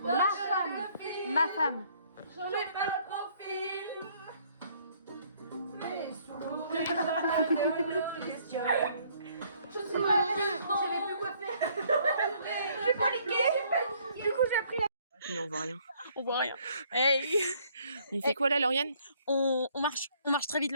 Ma femme. J'en ai pas le profil, mais sous les questions. Je suis pas j'avais plus quoi faire. J'ai paniqué. Du coup, j'ai pris la. Mais on voit rien. On voit rien. Hey. On fait quoi là, Lauriane? On marche très vite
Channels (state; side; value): inverted; both; correlation -0.63